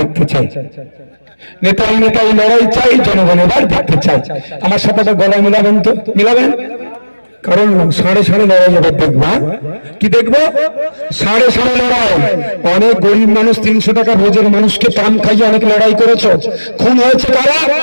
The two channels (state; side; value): inverted; both; correlation -1.00